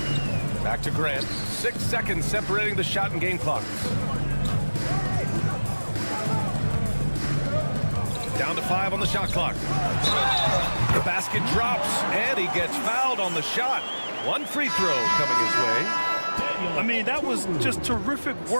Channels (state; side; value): inverted; both; correlation -1.00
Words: Back to Grant. 6 seconds separating the shot and game clocks. Down to 5 on the shot clock. The basket drops, and he gets fouled on the shot. 1 free throw coming his way. I mean, that was just terrific